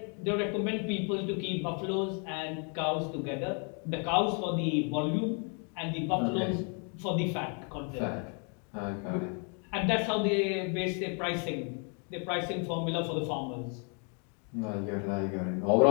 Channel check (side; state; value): right; quieter; 39.4 dB